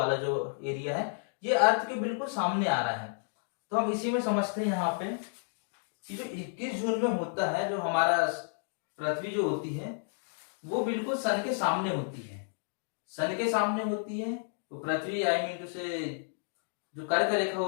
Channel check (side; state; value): right; silent; digital silence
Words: जो एरिया है, ये अर्थ के बिल्कुल सामने आ रहा है। तो हम इसी में समझते हैं यहाँ पे कि जो 21 जून में होता है, जो हमारा पृथ्वी जो होती है वो बिल्कुल सन के सामने होती है, सन के सामने होती है। तो पृथ्वी आई मीन टू से जो कर्क रेखा